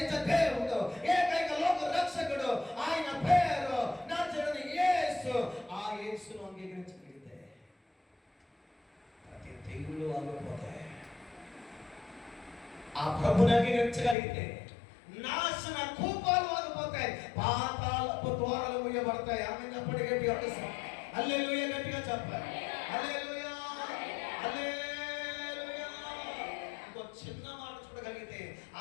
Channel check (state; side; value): drops out; right; at 14.2 s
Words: దేవుడు, ఏకైక లోక రక్షకుడు, ఆయన పేరు నజరేయుడైన యేసు. ఆ యేసును అంగీకరించగలిగితే ప్రతి తెగులు ఆగిపోతాయి. ఆ ప్రభుని అంగీకరించగలిగితే నాశన కూపాలు ఆగిపోతాయి, పాతాళపు ద్వారాలు మూయబడతాయి. ఆమె చెప్పండి గట్టిగా, హల్లెలూయా, గట్టిగా చెప్పాలి, హల్లెలూయా, హల్లెలూయా. ఇంకో చిన్న మాట చూడగలిగితే,